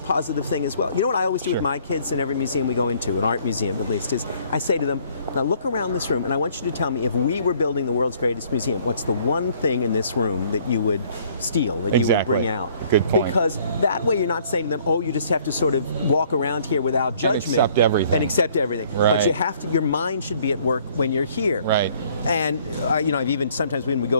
positive thing as well. You know what I always do with my kids in every museum we go into, an art museum at least, is I say to them, now look around this room, and I want you to tell me, if we were building the world's greatest museum, what's the one thing in this room that you would steal, that you would bring out? Good point. Because that way you're not saying to them, oh, you just have to sort of walk around here without judgment. And accept everything. Right. But you have to, your mind should be at work when you're here. Right. And I've even sometimes when we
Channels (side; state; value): both; inverted; correlation -0.60